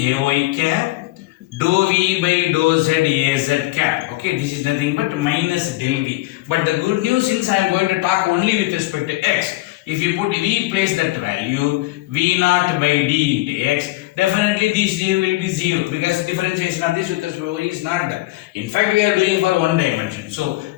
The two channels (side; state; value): right; quieter; 19.3 dB